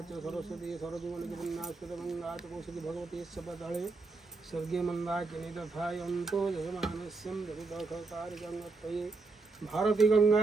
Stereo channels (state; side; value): quieter; left; 3.8 dB